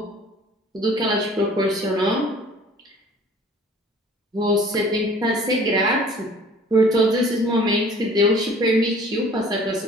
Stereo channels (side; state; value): both; normal; correlation 0.50